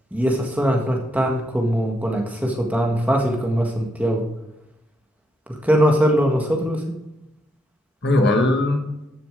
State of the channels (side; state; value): both; normal; correlation 0.78